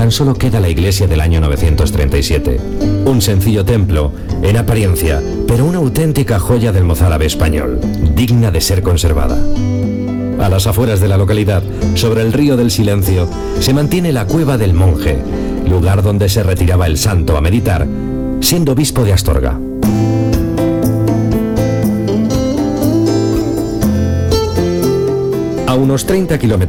solo queda la iglesia del año 937. Un sencillo templo, en apariencia, pero una auténtica joya del mozárabe español, digna de ser conservada. A las afueras de la localidad, sobre el río del Silencio, se mantiene la Cueva del Monje, lugar donde se retiraba el santo a meditar, siendo obispo de Astorga. A unos 30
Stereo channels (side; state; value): both; identical; correlation 1.00